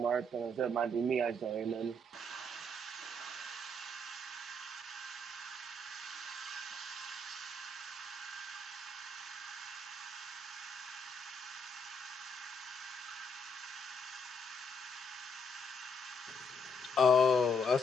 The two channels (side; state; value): both; normal; correlation 0.73